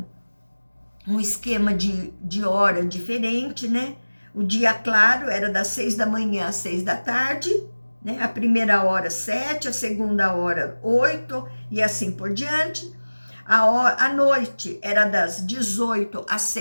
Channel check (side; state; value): both; inverted; correlation -1.00